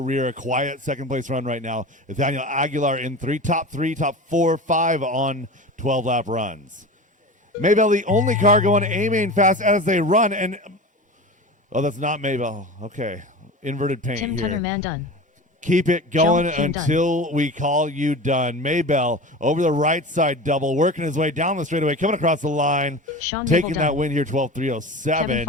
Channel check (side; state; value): both; normal; correlation 0.31